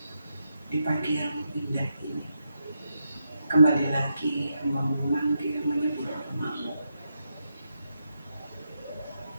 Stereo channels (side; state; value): both; inverted; correlation -0.84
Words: di pagi yang indah ini, kembali lagi hamba memanggil menyebut nama-Mu.